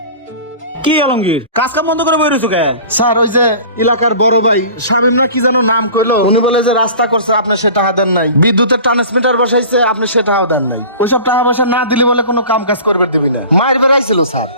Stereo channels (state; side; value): inverted; both; correlation -0.41